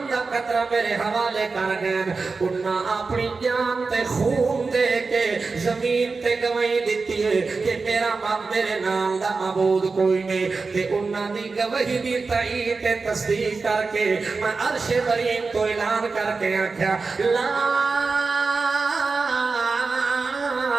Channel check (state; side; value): quieter; left; 4.3 dB